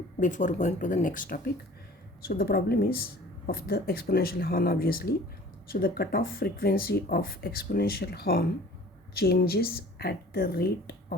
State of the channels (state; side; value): normal; both; correlation 0.47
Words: before going to the next topic. So the problem is of the exponential horn obviously. So the cutoff frequency of exponential horn changes at the rate